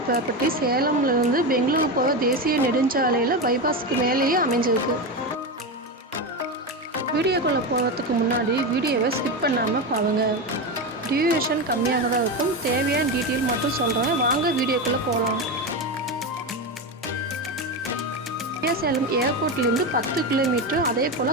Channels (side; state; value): both; normal; correlation 0.17